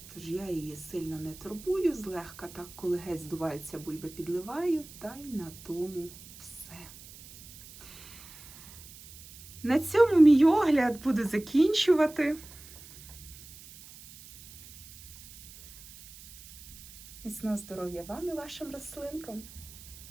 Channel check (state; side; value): noise; right; hiss, 18 dB below the sound